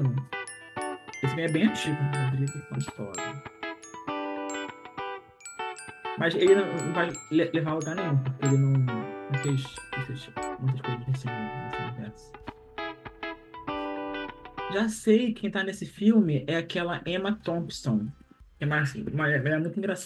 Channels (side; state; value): both; identical; correlation 1.00